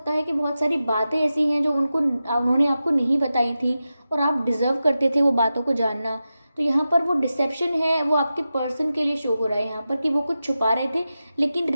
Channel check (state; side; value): inverted; both; correlation -0.92